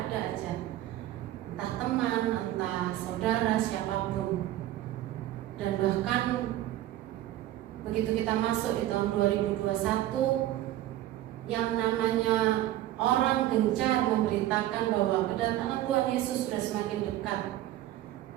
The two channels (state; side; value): quieter; left; 14.1 dB